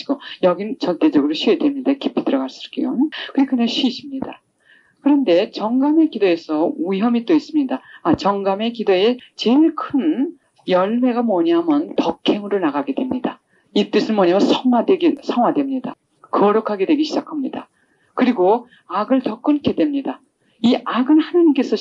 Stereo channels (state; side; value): identical; both; correlation 1.00